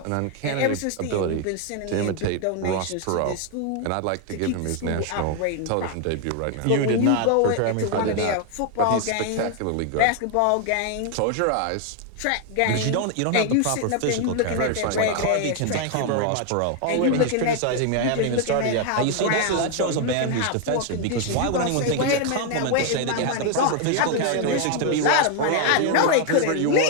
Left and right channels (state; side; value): different; both; correlation 0.01